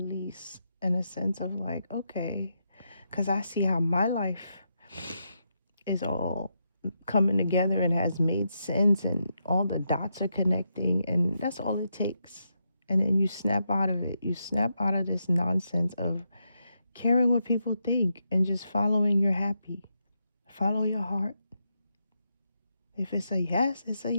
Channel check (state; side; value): inverted; both; correlation -0.82